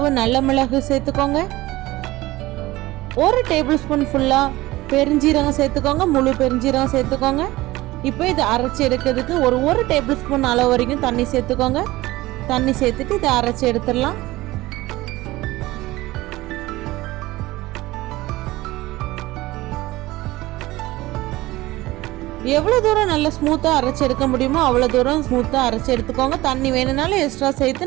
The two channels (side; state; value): left; quieter; 18.6 dB